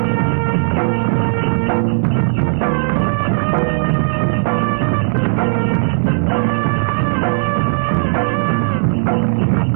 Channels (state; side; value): silent; left; digital silence